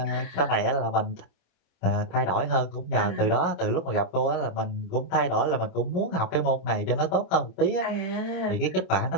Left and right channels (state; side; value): late; right; 27 ms